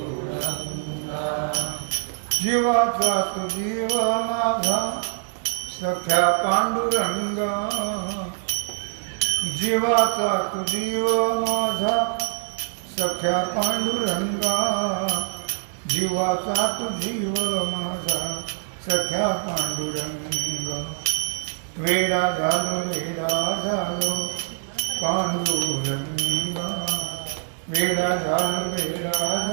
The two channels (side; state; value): left; silent; digital silence